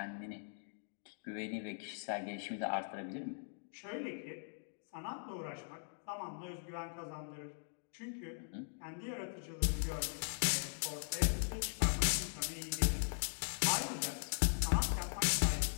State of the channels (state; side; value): silent; right; digital silence